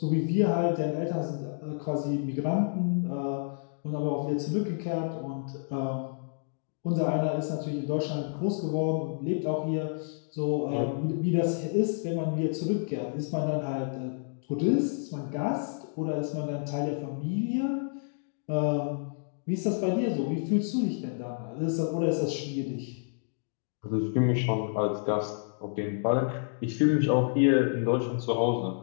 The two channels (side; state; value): right; silent; digital silence